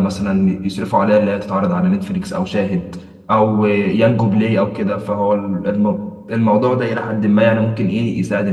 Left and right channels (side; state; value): both; identical; correlation 1.00